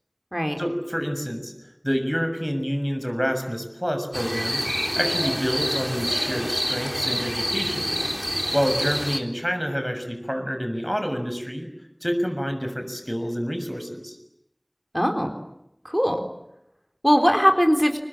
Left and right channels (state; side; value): identical; both; correlation 1.00